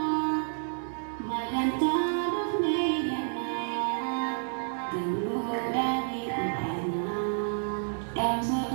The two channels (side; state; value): left; silent; 58 dB below the other